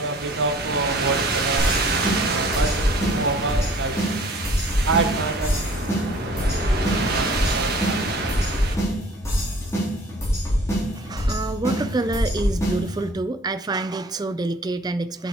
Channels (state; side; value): normal; both; correlation 0.51